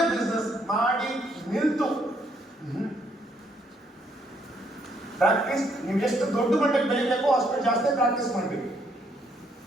ಬಿಸ್ನೆಸ್ ಮಾಡಿ ನಿಲ್ತು ಪ್ರಾಕ್ಟೀಸ್, ನೀವು ಎಷ್ಟು ದೊಡ್ಡ ಮಟ್ಟಕ್ಕೆ ಬೆಳಿಬೇಕು ಅಷ್ಟು ಜಾಸ್ತಿ ಪ್ರಾಕ್ಟೀಸ್ ಮಾಡಬೇಕು.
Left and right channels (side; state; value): both; normal; correlation 0.70